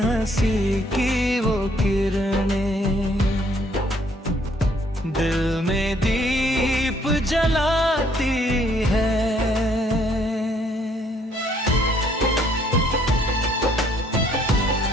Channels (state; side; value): normal; both; correlation 0.65